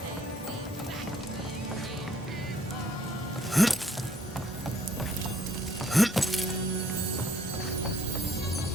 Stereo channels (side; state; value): both; normal; correlation 0.64